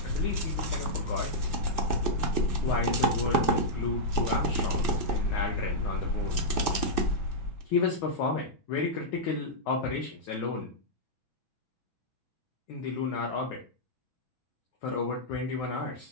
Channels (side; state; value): right; late; 6.1 ms